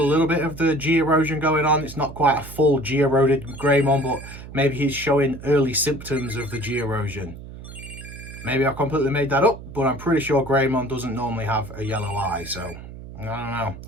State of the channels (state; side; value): noise; right; hum, 14 dB below the sound